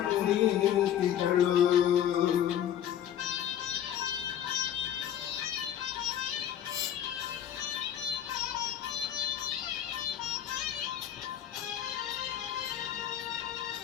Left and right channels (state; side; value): quieter; right; 10.3 dB